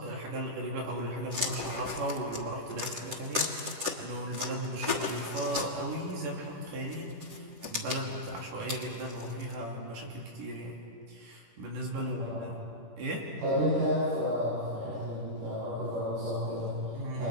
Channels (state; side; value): late; left; 10 ms